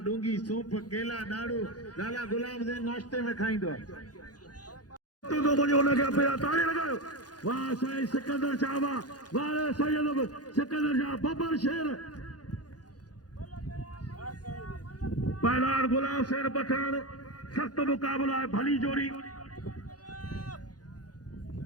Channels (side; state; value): right; late; 0.69 ms